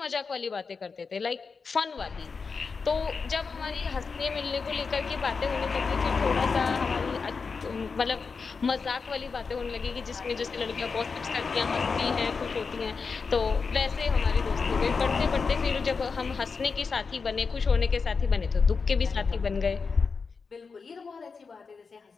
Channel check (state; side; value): quieter; right; 5.0 dB